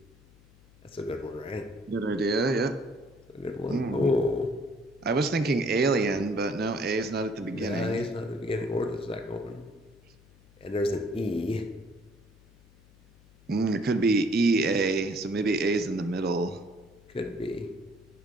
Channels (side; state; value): left; noise; hum, 27 dB below the sound